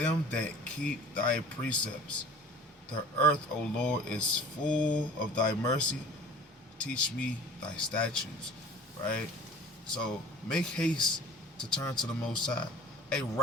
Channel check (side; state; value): both; normal; correlation 0.44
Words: that keep thy precepts. The earth, O Lord, is full of thy mercy. Teach me thy statutes. Right? So make haste to turn to the Most High. Hey,